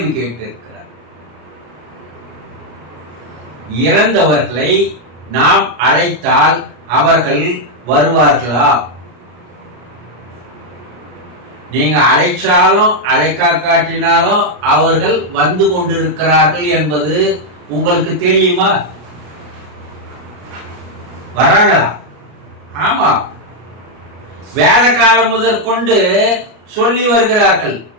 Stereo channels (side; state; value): left; late; 33 ms